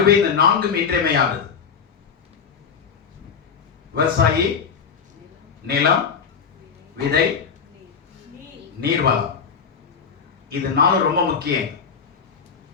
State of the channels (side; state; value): right; quieter; 6.3 dB